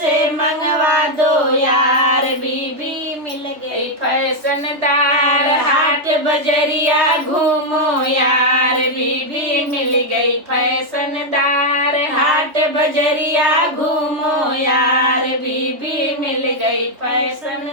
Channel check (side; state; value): left; late; 3.1 ms